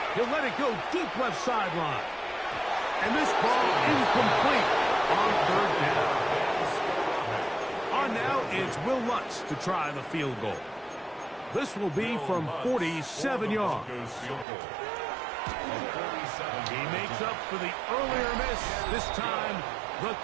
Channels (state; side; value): drops out; left; at 14.5 s